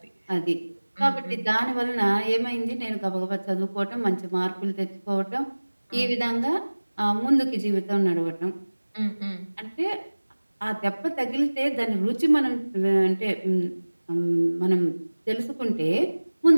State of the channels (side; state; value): both; inverted; correlation -1.00